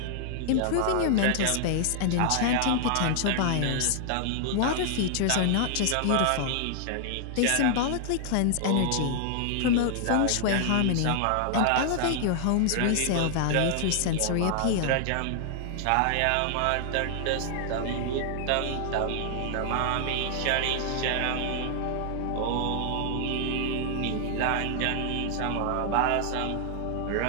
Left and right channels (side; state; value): both; different; correlation 0.00